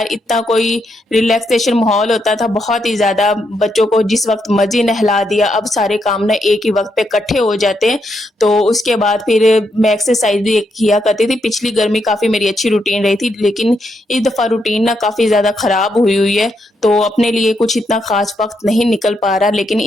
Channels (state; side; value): normal; both; correlation 0.79